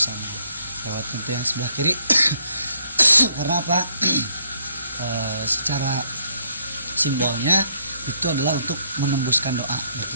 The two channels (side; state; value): both; inverted; correlation -0.71